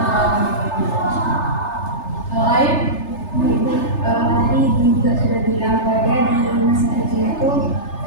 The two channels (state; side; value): late; right; 3.3 ms